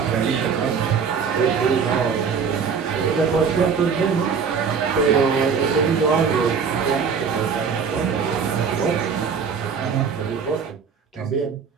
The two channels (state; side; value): quieter; left; 6.1 dB